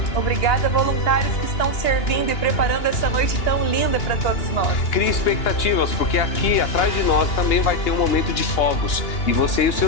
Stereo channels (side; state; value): right; late; 2.8 ms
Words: Obrigada, voluntários que estão servindo e preparando essa noite tão linda para todos nós. Crie expectativas, porque aqui atrás de nós também vai ter um momento de fogos. E você e os